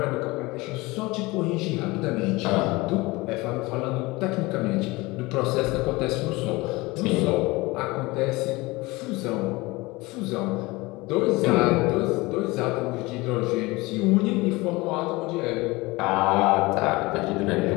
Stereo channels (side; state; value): right; quieter; 22.3 dB